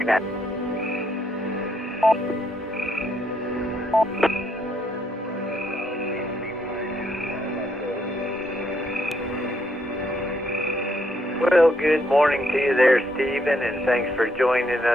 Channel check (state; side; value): normal; both; correlation 0.74